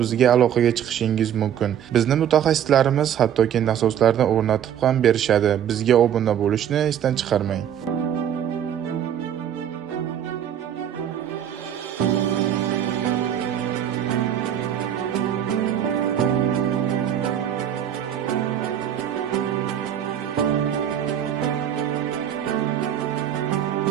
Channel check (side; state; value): left; quieter; 9.6 dB